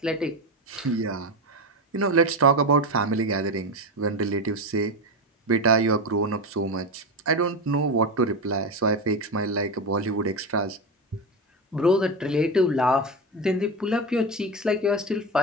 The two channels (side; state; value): both; normal; correlation 0.18